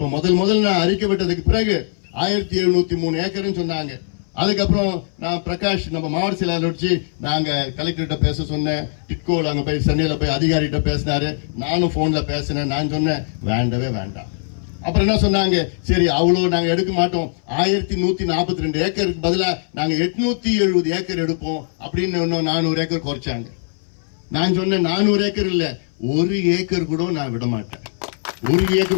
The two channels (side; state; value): right; silent; 62 dB below the other